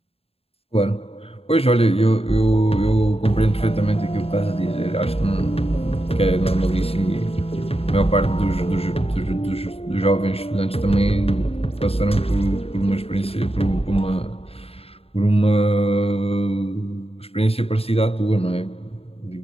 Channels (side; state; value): right; late; 0.28 ms